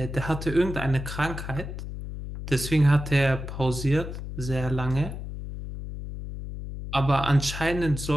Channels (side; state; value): left; noise; hum, 8 dB below the sound